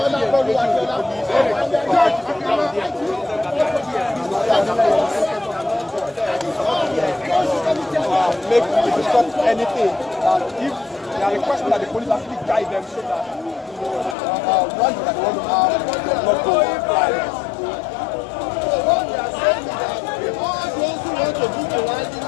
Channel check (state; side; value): drops out; right; at 14.2 s